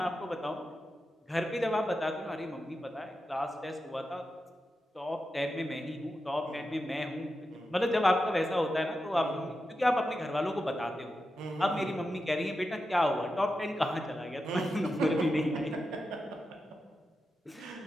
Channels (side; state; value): both; normal; correlation 0.89